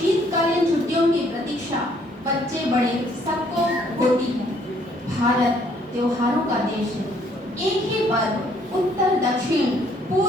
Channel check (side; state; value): both; normal; correlation 0.64